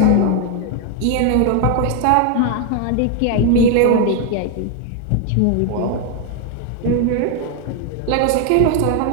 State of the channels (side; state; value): both; different; correlation 0.01